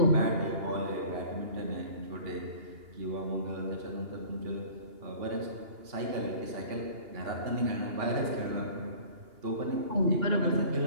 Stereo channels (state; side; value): late; left; 2.8 ms